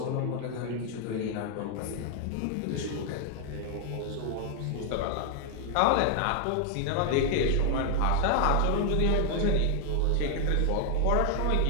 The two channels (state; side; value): different; both; correlation 0.00